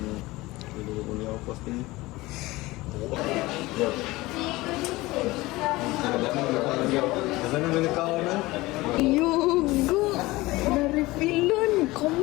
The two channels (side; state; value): right; quieter; 20.0 dB